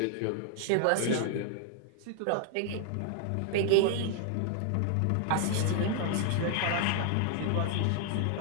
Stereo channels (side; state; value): both; different; correlation 0.00